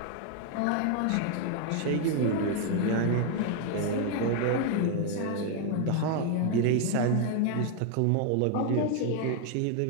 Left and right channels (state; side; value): different; both; correlation 0.00